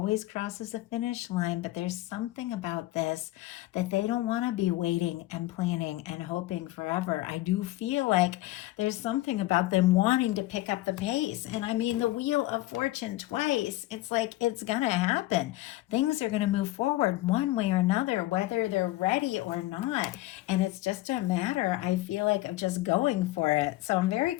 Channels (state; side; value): quieter; right; 17.1 dB